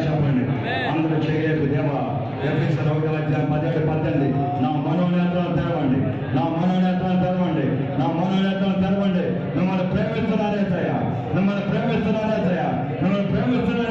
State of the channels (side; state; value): left; noise; hum, 24 dB below the sound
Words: చెప్పండి. అందరూ చేయలేదు దేవా. ఎఫెసీయుల 1:17-18 నా మనోనేత్రాలు తెరవండి, నా మనోనేత్రాలు తెరవండి, నా మనోనేత్రాలు తెరవండి. మిమ్మల్ని ప్రేమిస్తున్నానేసయ్యా, మిమ్మల్ని ప్రేమిస్తున్నానేసయ్యా, మిమ్మల్ని